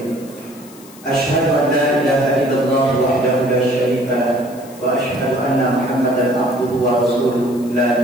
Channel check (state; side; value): noise; left; hiss, 22 dB below the sound